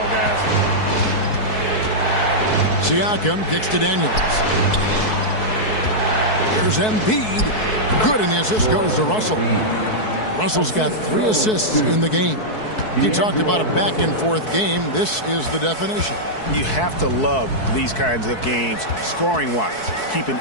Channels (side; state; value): right; late; 4.6 ms